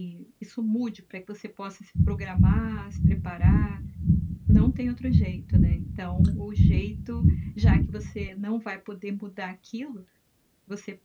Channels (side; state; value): both; identical; correlation 1.00